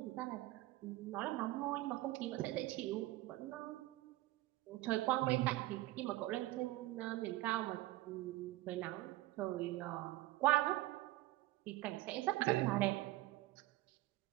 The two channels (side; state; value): left; quieter; 17.6 dB